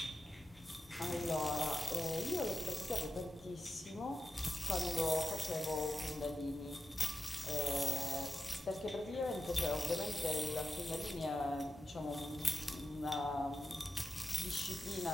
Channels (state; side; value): normal; both; correlation 0.90